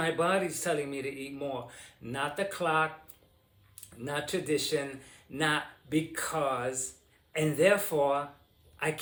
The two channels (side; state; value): both; identical; correlation 1.00